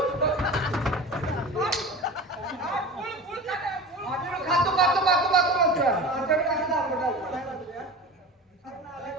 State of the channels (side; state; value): both; normal; correlation 0.33